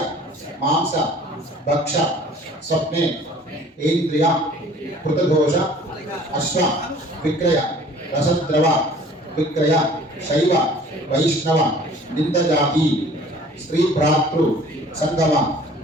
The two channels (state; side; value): normal; both; correlation 0.50